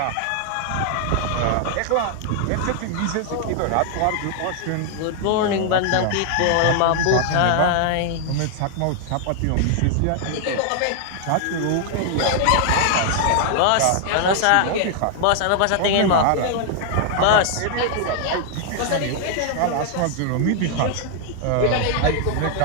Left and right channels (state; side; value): different; both; correlation 0.00